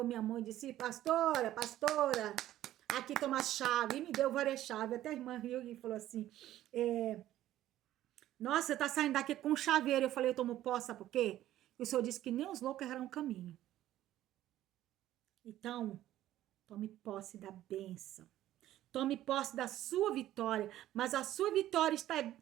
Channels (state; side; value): quieter; left; 13.6 dB